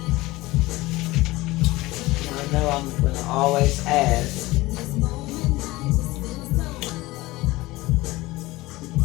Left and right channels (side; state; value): right; quieter; 19.7 dB